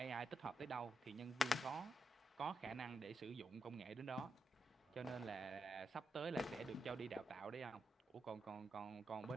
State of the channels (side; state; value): both; normal; correlation 0.84